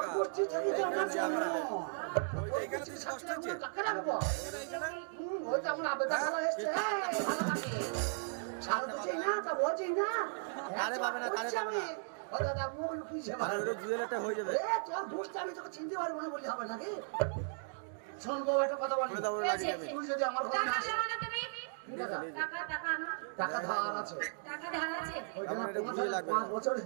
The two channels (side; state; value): left; silent; digital silence